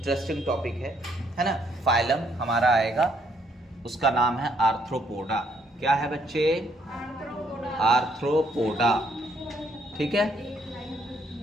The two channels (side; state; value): both; normal; correlation 0.70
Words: टॉपिक है ना। फाइलम हमारा आएगा, उसका नाम है आर्थ्रोपोडा। क्या है बच्चे? आर्थ्रोपोडा। ठीक है,